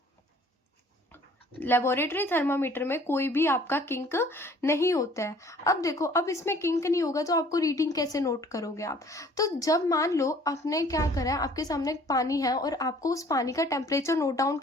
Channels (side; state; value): both; normal; correlation 0.54